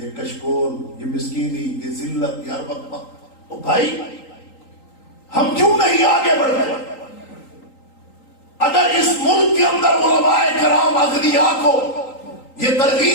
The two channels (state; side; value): late; right; 3.8 ms